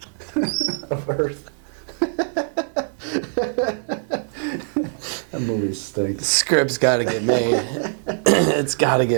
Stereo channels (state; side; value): silent; left; 64 dB below the other